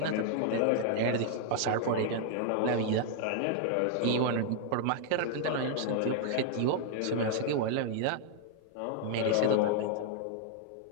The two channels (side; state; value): both; different; correlation 0.00